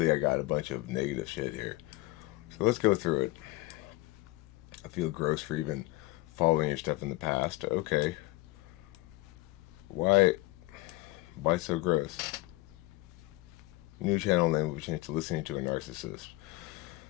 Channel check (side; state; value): right; quieter; 19.7 dB